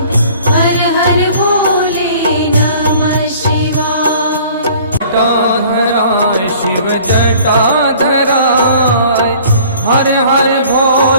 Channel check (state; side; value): inverted; both; correlation -0.51